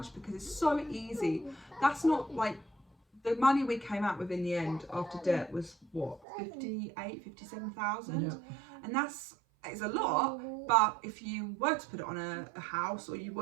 because it's so easy. That's not like the money we came out with in the end after debt was what, 57,000, and it's a lot. But if you were to put it on a house, or you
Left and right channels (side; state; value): left; drops out; at 6.2 s